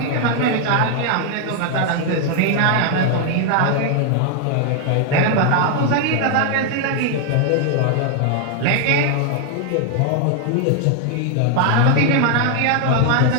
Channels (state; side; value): different; both; correlation 0.00